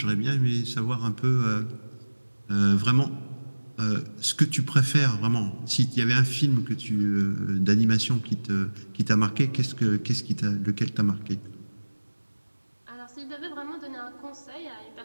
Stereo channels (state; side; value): inverted; both; correlation -1.00